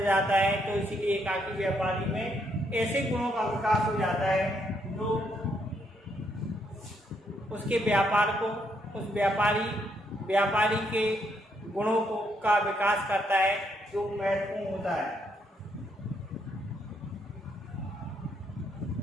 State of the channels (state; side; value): normal; both; correlation 0.74